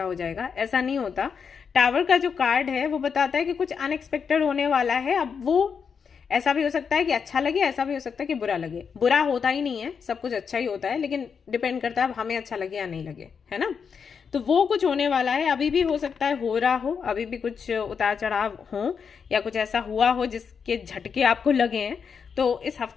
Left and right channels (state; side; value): quieter; right; 6.3 dB